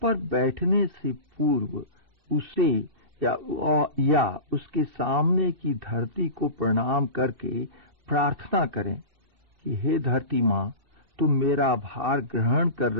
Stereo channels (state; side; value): late; left; 2.6 ms